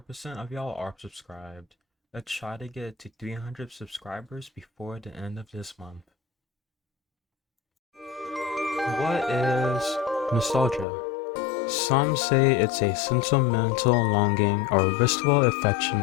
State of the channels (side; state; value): right; drops out; at 10.9 s